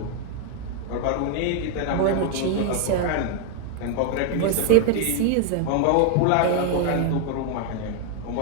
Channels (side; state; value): both; different; correlation 0.00